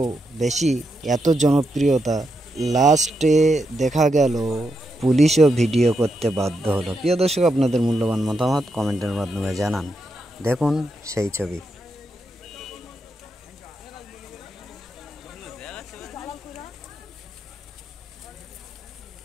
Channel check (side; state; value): both; normal; correlation 0.83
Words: বেশি, এত জনপ্রিয়তা, লাস্টে দেখা গেল পুলিশও ভিডিও করতে বাধ্য হলো। প্রিয় দর্শক, আপনাদের মূল্যবান মতামত কমেন্টের মাধ্যমে জানান। দেখুন সেই ছবি।